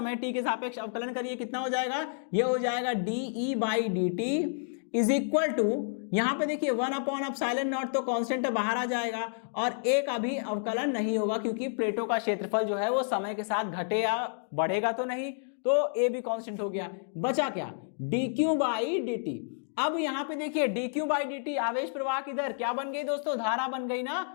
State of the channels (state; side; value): silent; right; digital silence